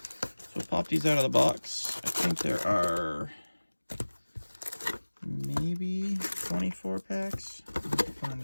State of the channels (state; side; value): inverted; both; correlation -1.00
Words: So pop these out of the box. I think there are maybe 24 packs. Let's find